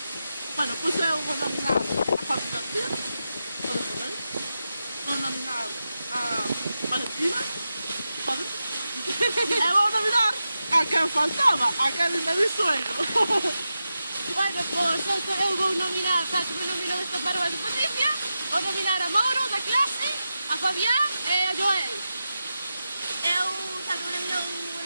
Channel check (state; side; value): inverted; both; correlation -0.90